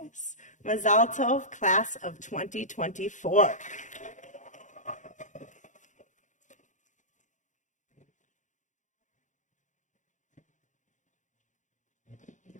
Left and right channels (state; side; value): late; right; 0.36 ms